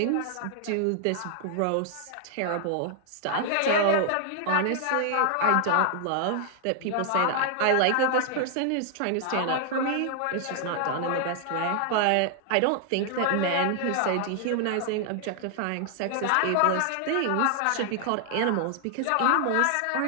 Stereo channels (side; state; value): both; different; correlation 0.00